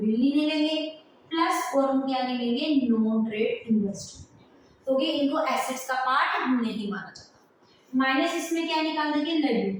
नहीं लेंगे प्लस और हम क्या नहीं लेंगे, नॉन ट्रेड इन्वेस्टमेंट, क्योंकि इनको एसेट्स का पार्ट नहीं माना जाता। माइनस इसमें क्या निकाल देंगे,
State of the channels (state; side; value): identical; both; correlation 1.00